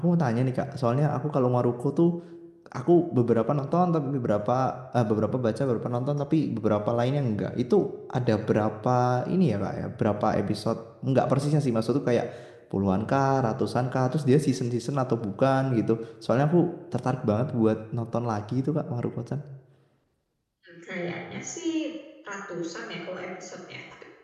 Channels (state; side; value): identical; both; correlation 1.00